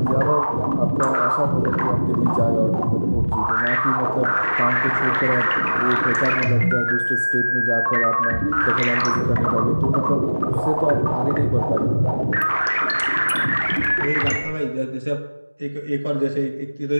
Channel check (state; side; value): inverted; both; correlation -1.00